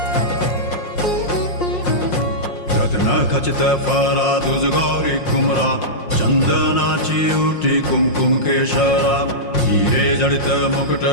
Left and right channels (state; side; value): late; right; 5.6 ms